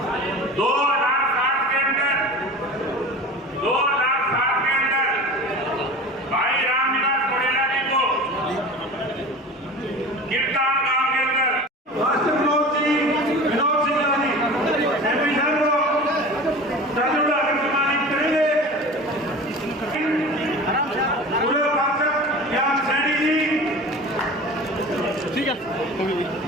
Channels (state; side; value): normal; both; correlation 0.36